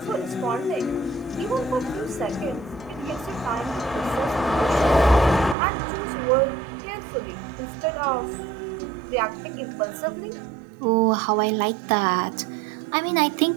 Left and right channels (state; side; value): drops out; left; at 5.6 s